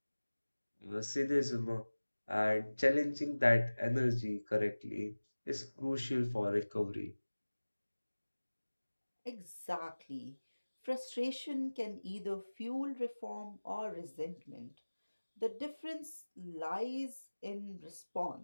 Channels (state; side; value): inverted; both; correlation -1.00